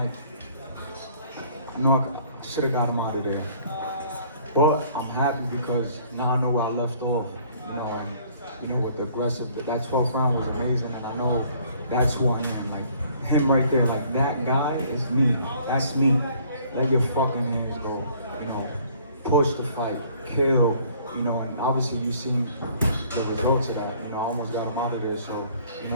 I know I should have got him out of there, but I'm happy because now I know where I left off. You know, and you know, with the aggressive, that 12th round was amazing, and I know that's who I am. Like him right there, like that guy is me. That's me. Let your fucking hands go. You know, push the fight, kill. You know, and obviously you've seen the results of that. You know, I almost got him out of there. So, you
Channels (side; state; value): both; inverted; correlation -0.58